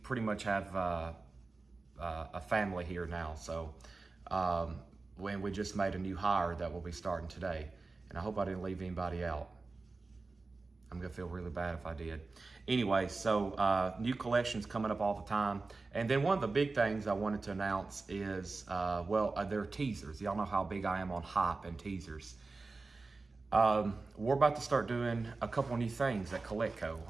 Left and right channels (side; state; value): left; quieter; 3.7 dB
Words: pretty much have a family here now. So when we just made a new hire that will be starting today, and I hope I didn't leave anybody out. I'm gonna feel really bad if I did. Anyway, so new collections coming up all the time. And then one of the big things I wanted to announce is, they're teasers. Y'all know how big I am on hype and teasers. We're about to start doing a couple new things at Coletco.